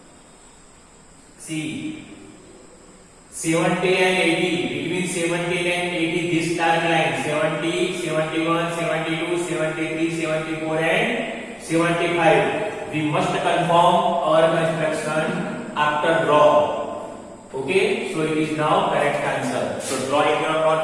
See, 70 and 80, between 70 and 80, this dark line, 70, 71, 72, 73, 74 and 75. We must confirm our construction after draw. Okay, so it is now correct answer. So draw in your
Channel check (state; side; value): identical; both; correlation 1.00